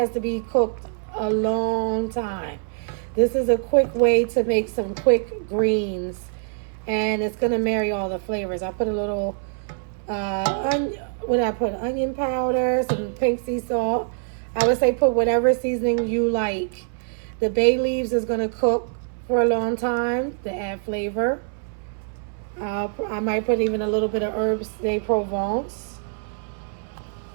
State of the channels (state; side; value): silent; left; 63 dB below the other